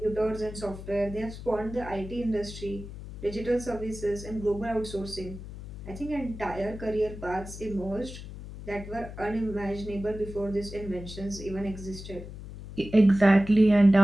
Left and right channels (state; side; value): noise; left; hum, 12 dB below the sound